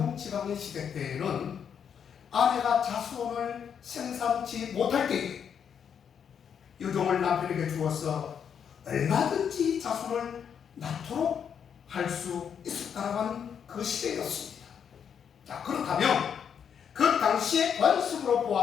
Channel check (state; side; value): quieter; right; 7.7 dB